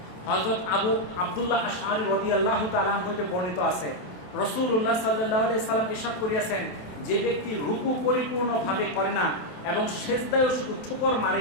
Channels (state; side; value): late; right; 27 ms